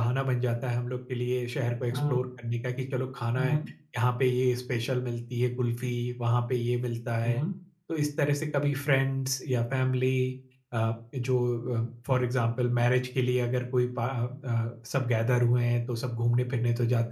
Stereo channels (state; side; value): identical; both; correlation 1.00